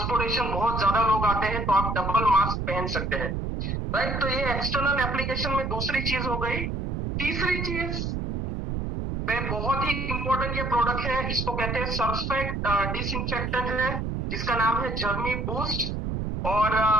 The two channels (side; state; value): right; noise; rumble, 2 dB below the sound